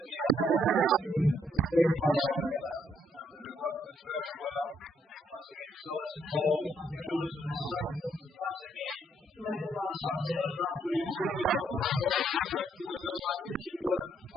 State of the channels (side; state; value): both; normal; correlation 0.71